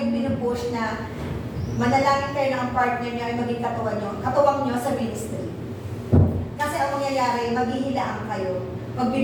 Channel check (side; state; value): both; identical; correlation 1.00